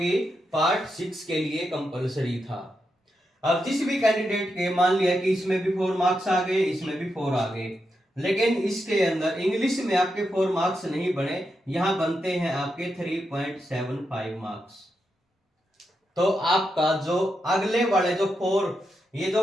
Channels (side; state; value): both; normal; correlation 0.85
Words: पार्ट 6 के लिए कंपलसरी था। अब जिस भी कैंडिडेट के मान लिया कि इसमें भी 4 मार्क्स आ गए, इसमें भी 4 आ गए, लेकिन इसके अंदर इंग्लिश में आपके 4 मार्क्स नहीं बने, यहां बनते हैं आपके 3.75 मार्क्स। तो आपका जो अगले वाले जो 4, ये